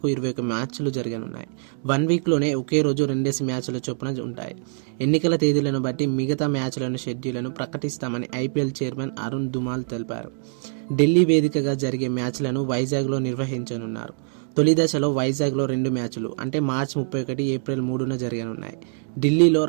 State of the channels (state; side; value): silent; left; digital silence